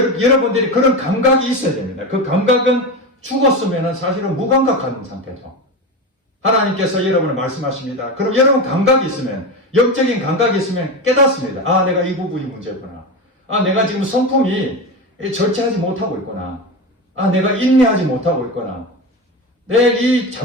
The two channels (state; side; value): normal; both; correlation 0.21